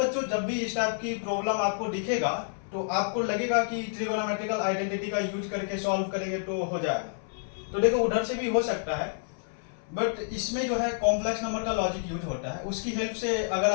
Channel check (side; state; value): right; silent; 59 dB below the other